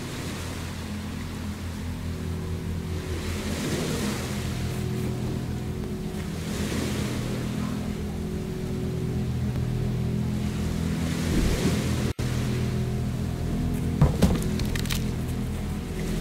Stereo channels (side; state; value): both; identical; correlation 1.00